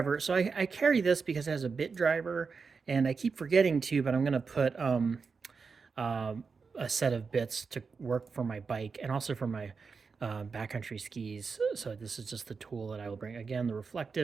So I carry this because it has a bit driver, and I keep forgetting to, but I'm going to put uh, a set of bits to work for my bike and also for my backcountry skis. So this is just the tool that I will bring. Again, the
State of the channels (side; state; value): left; quieter; 5.1 dB